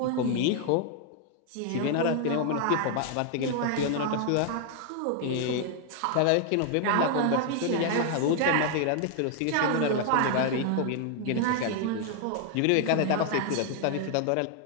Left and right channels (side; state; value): both; different; correlation 0.00